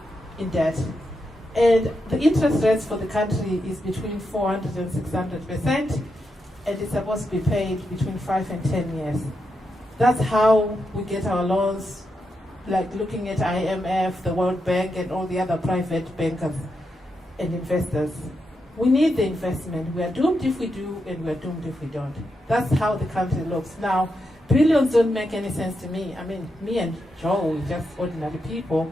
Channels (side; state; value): both; normal; correlation 0.85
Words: in debt. And the interest rates for the country is between 400 and 600%, and it's supposed to be paid between 5 and 10 years. That's how we get our loans, like looking at IMF, the World Bank, and all the other private bankers and investors. We need the investment. We are doomed if we do, and we are doomed if we don't. That's how the country looks. Now, billions don't make any sense to me. I mean, me and Joe, we're just ordinary